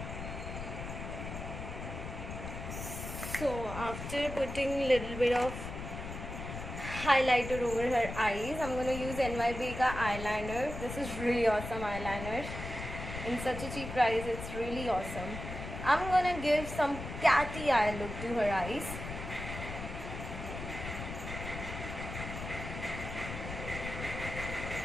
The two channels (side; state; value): left; noise; rumble, 8 dB below the sound